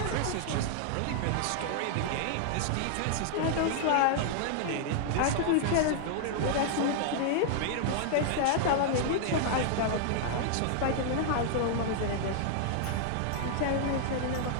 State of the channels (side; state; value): both; different; correlation -0.01